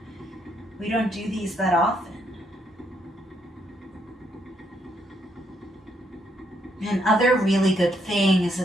we don't do these that often. And other really good thing is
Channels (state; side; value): normal; both; correlation 0.74